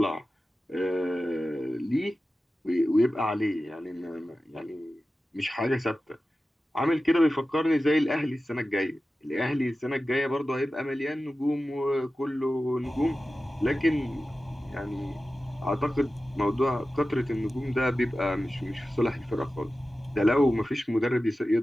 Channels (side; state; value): both; normal; correlation 0.94